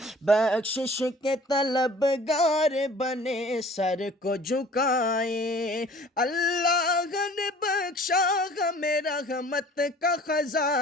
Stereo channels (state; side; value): normal; both; correlation 0.49